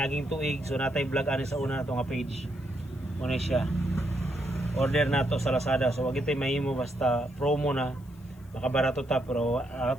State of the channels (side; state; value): left; noise; hiss, 29 dB below the sound